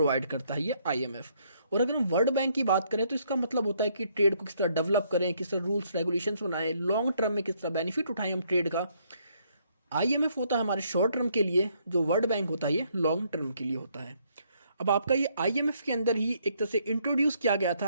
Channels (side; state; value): both; inverted; correlation -0.69